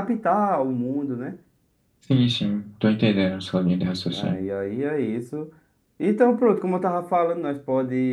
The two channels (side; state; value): both; identical; correlation 1.00